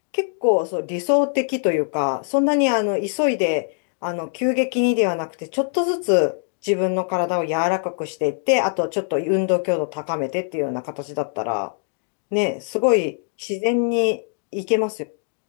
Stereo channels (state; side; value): silent; right; 60 dB below the other